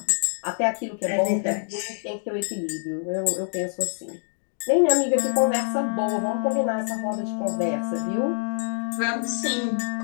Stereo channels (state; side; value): silent; right; digital silence